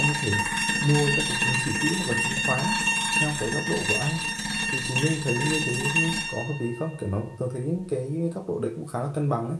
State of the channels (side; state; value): both; identical; correlation 1.00